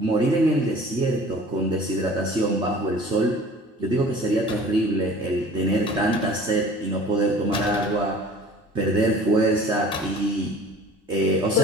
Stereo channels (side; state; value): both; normal; correlation 0.46